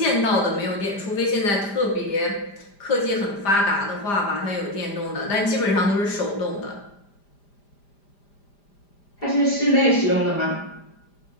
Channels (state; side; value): late; right; 5.0 ms